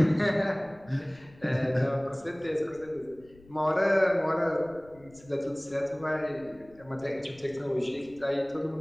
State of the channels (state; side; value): noise; left; rumble, 26 dB below the sound